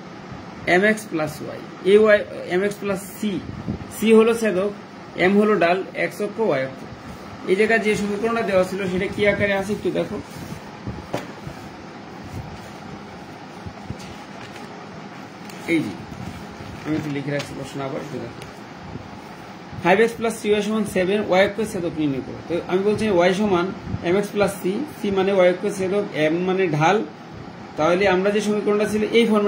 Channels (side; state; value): both; identical; correlation 1.00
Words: এম এক্স প্লাস ওয়াই, এই Y M X plus C, C হলো ছেদক, এম হলো ডাল, এক্স অক্ষ ওয়াই অক্ষ। এই জায়গায় যে সমীকরণটা দেওয়া ছিল সেটা কি আকারে আছে একটু দেখো। এই যে আমি একটু লিখে রাখছি প্রশ্ন, আবার একটু দেখো। 5x প্লাস 3y সমান 7, ওয়াই অক্ষের ছেদক নির্ণয় করো। তো আমি বলছি ওয়াই সমান mx প্লাস সি, সি মানে ওয়াই অক্ষের ছেদক, এম মানে ঢাল। তাহলে আমরা যে সমীকরণটা ছিল এই